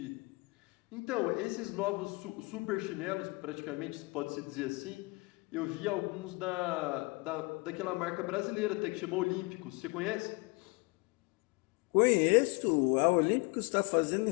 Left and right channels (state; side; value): quieter; right; 27.4 dB